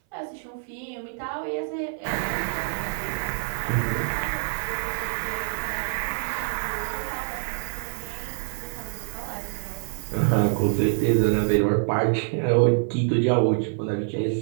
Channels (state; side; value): silent; left; 59 dB below the other